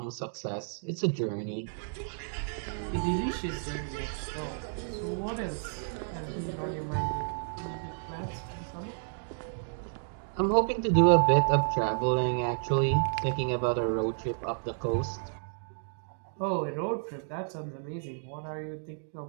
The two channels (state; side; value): silent; left; digital silence